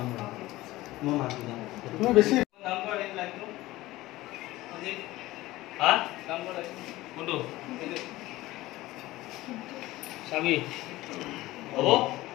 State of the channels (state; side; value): quieter; right; 17.8 dB